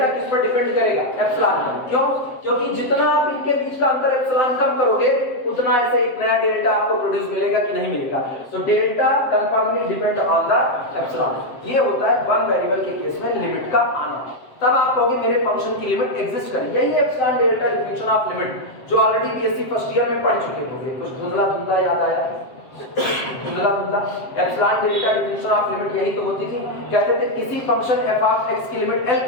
किस पर डिपेंड करेगा? एप्सिलॉन पर। क्यों? क्योंकि जितना आप इनके बीच का अंतर एप्सिलॉन कम करोगे उतना ऐसे एक नया डेल्टा आपको प्रोड्यूस मिलेगा कि नहीं मिलेगा? तो delta कंफर्मली depend on the epsilon. ये होता है वन वेरिएबल के केस में लिमिट का आना। तब आप कहोगे मेरे फंक्शन की लिमिट एग्जिस्ट करेगी। यही epsilon delta definition of limit जो ऑलरेडी बीएससी फर्स्ट ईयर में पढ़ चुके होंगे। कुछ धुंधला याद आया? Epsilon delta definition of limit यही तो होती थी। कहते थे किसी फंक्शन f ऑफ x की लिमिट L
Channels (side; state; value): right; late; 7.7 ms